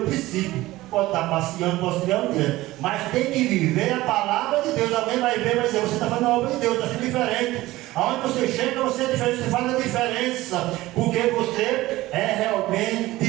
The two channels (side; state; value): left; quieter; 17.8 dB